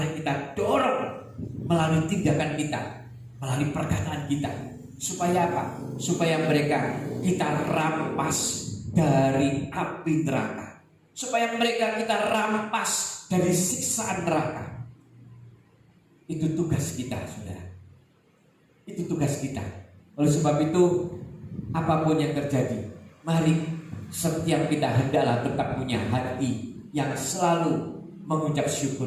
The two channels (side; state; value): both; identical; correlation 1.00